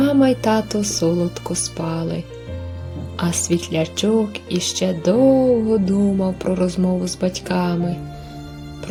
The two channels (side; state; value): both; identical; correlation 1.00